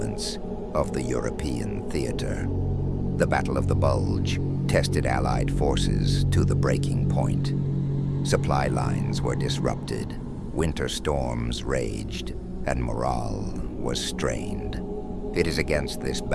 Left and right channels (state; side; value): identical; both; correlation 1.00